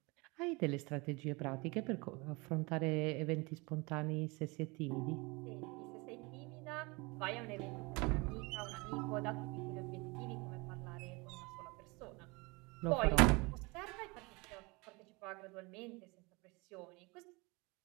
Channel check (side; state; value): left; quieter; 26.4 dB